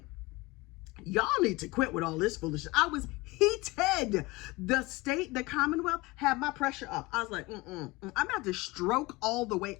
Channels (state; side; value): quieter; right; 22.2 dB